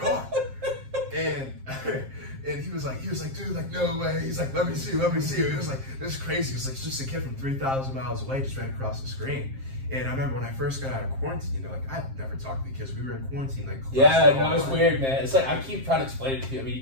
and he was like, dude, like, no way. He's like, let me see. He was like, this is crazy. He was like, it's just a kid from 3,000 miles away, just right across the screen. And I remember when I first got out of quarantine, like, I never talked to the kids. We were in quarantine, like, yeah, no, it's weird, man. It's like I keep trying to explain it to you. I mean,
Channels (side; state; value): left; late; 7.5 ms